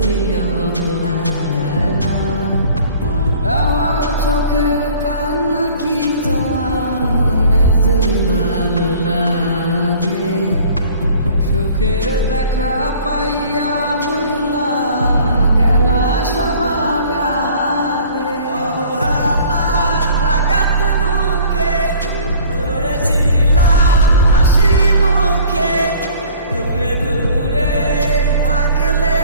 অবহেলা। আমার চোখের কান্না কি তোমার এতই ভালো লাগে? সুখের দেখা পাইয়া ভুলা গেলা সবার আগে। অবহেলা রাগাত মুখে ধরেছিলাম হাসি মুখে, দূরে দূরে থাকলে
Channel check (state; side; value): inverted; both; correlation -0.50